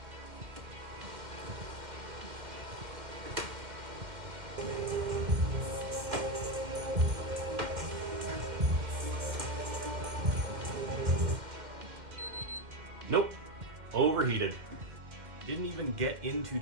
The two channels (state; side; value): late; left; 2.1 ms